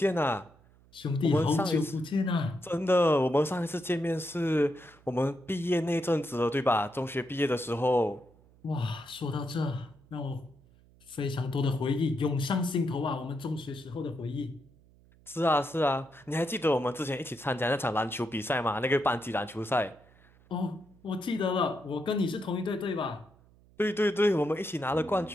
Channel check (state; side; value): noise; right; hum, 28 dB below the sound